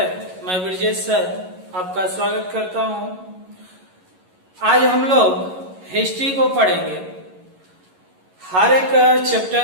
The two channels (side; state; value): left; late; 11 ms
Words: मैं ब्रजेश सर आपका स्वागत करता हूं। आज हम लोग हिस्ट्री को पढ़ेंगे। हर एक